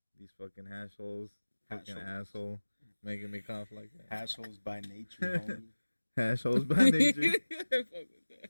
These fucking hash holes. Hash Fucking holes. asshole. Making me cough like that. Hash holes by nature, homie. Hash holes by nature. Fuck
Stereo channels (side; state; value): both; inverted; correlation -1.00